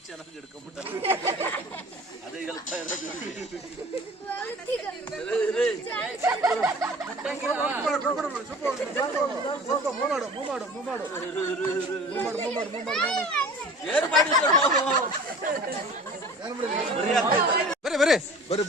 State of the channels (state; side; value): normal; both; correlation 0.43